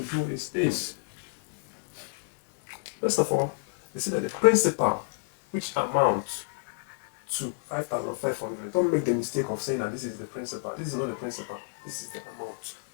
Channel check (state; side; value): silent; right; digital silence